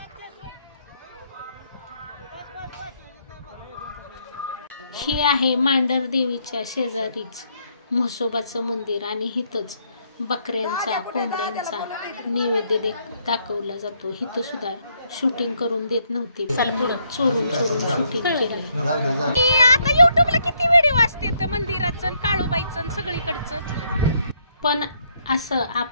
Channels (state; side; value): inverted; both; correlation -0.72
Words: ही आहे मांढर देवीच्या शेजारीच म्हसोबाचं मंदिर आणि हिथंच बकऱ्यांचा कोंबड्यांचा नैवेद्य दाखवला जातो. हिथं सुद्धा शूटिंग करून देत नव्हते. चोरून चोरून शूटिंग केलंय. आता युट्यूबला किती व्हिडिओ असते मंदिराचं, काळूबाईचं, सगळीकडचं. पण असं